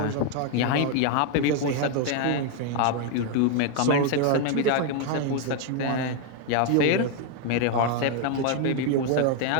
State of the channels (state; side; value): different; both; correlation 0.01